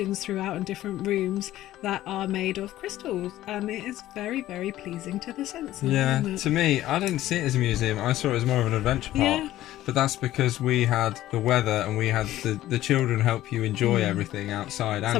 throughout in different rooms that are made of crystals, and it is very, very pleasing to the senses. Yeah, isn't it? to me, I didn't see it as a museum. I saw it as more of an adventure park. Yeah. But that's because we had the weather, and we had the children help you enjoy everything outside and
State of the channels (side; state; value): right; quieter; 14.5 dB